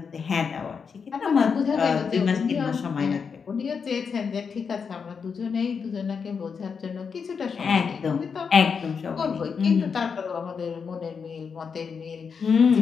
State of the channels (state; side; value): quieter; right; 6.0 dB